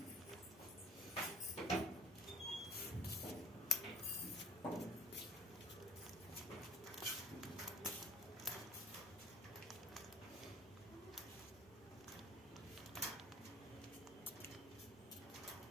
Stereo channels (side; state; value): both; normal; correlation 0.44